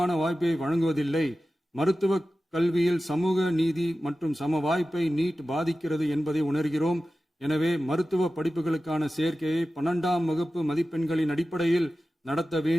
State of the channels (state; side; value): normal; both; correlation 0.95